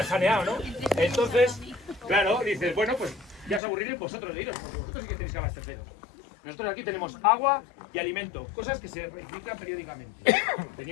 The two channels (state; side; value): drops out; right; at 3.6 s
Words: saneado, ¿no? Entonces, claro, dices, bueno, pues ya os aburriréis vosotros de iros, porque vosotros sí que tenéis que abasteceros. Nosotros aquí tenemos agua y alimento, cosas que se reciclan periódicamente.